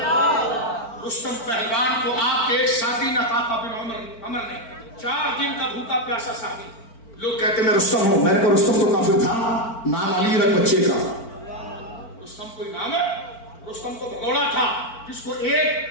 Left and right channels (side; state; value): right; late; 4.5 ms